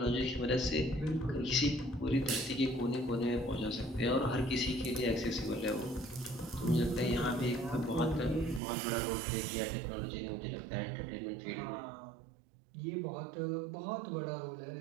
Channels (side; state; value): left; drops out; at 8.6 s